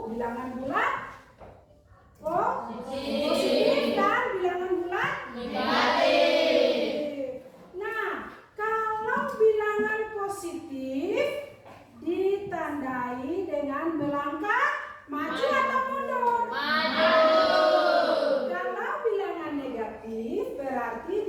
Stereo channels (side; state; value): both; identical; correlation 1.00